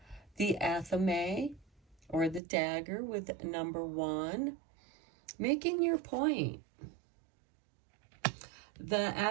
the athame, or the dagger, with number 1, making your point. The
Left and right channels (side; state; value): left; drops out; at 2.4 s